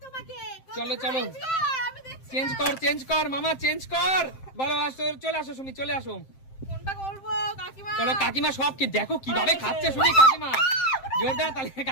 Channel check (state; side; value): late; right; 7.6 ms